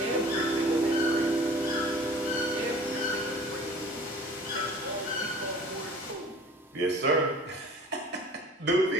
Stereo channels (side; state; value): both; normal; correlation 0.46